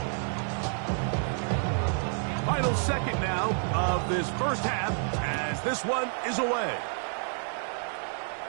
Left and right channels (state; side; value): silent; left; 58 dB below the other